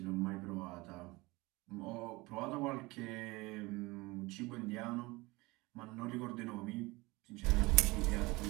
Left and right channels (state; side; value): quieter; left; 22.7 dB